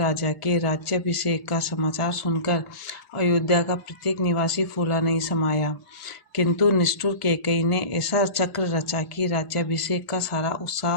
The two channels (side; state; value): right; late; 1.1 ms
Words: के राज्याभिषेक का समाचार सुनकर अयोध्या का प्रत्येक निवासी फूला नहीं समाया। किंतु निष्ठुर कैकेयी ने ऐसा चक्र रचा कि राज्याभिषेक का सारा